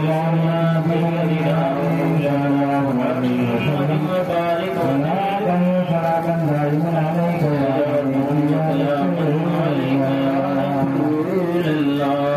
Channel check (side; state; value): both; identical; correlation 1.00